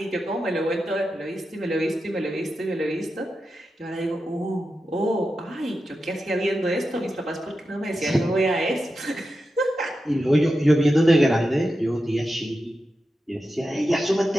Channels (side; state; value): both; normal; correlation 0.90